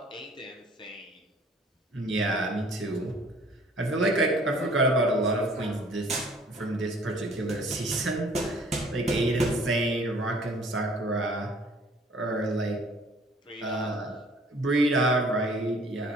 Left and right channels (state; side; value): normal; both; correlation 0.55